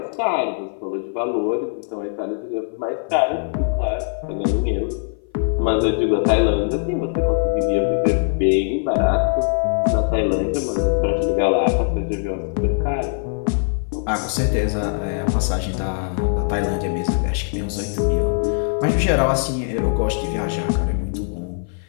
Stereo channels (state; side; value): silent; right; 58 dB below the other